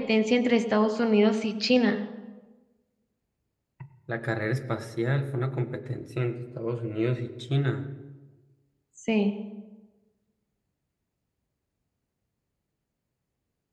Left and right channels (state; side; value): identical; both; correlation 1.00